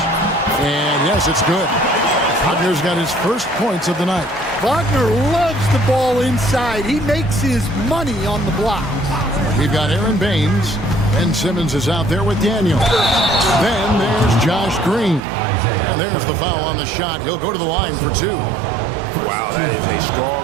And yes, it's good. Wagner's got his first points of the night. Wagner loves the ball inside. He makes his money on the blocks. We've got Aaron Baines, and Simmons is out there with Daniel. Then there's Josh Green. And there's the foul on the shot. He'll go to the line for two. Wow, that is a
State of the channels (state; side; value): drops out; left; at 15.2 s